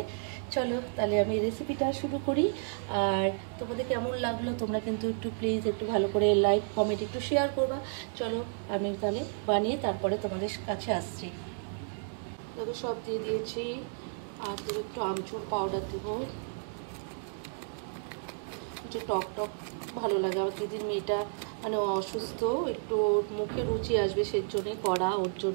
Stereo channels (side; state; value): left; silent; 57 dB below the other